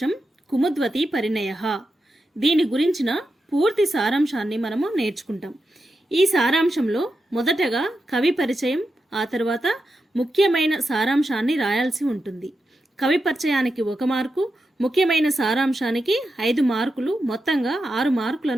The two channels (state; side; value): normal; both; correlation 0.88